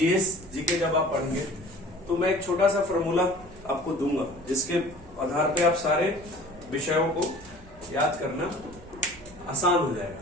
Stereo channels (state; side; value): noise; right; rumble, 20 dB below the sound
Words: जब आप पढ़ेंगे तो मैं एक छोटा सा फॉर्मूला आपको दूंगा, जिसके आधार पे आप सारे विषयों को याद करना आसान हो जाएगा।